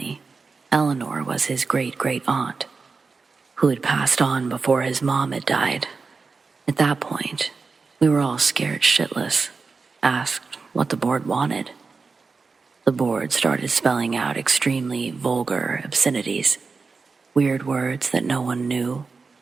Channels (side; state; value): left; quieter; 4.5 dB